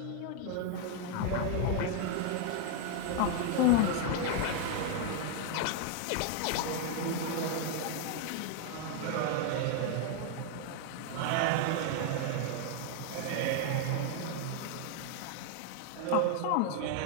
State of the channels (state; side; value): different; both; correlation 0.00